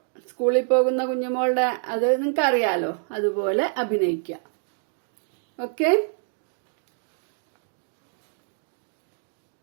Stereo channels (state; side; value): silent; left; 57 dB below the other